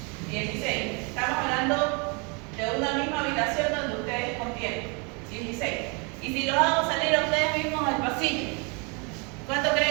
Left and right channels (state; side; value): quieter; left; 32.4 dB